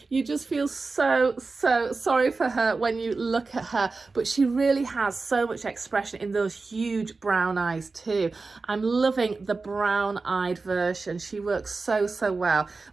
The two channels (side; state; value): left; quieter; 3.9 dB